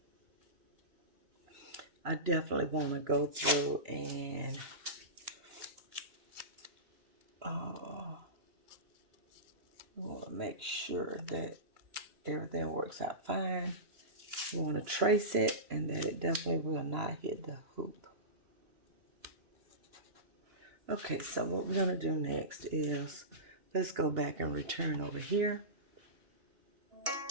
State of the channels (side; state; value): left; late; 2.9 ms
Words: I definitely want to go through and I want to make sure that everything works out fine. You want to trace it and that it definitely will not hit the hoop. Okay, so what we're going to do next is, let's go back and return over here.